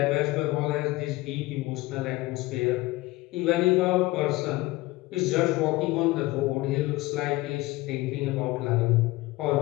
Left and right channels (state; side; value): quieter; right; 19.8 dB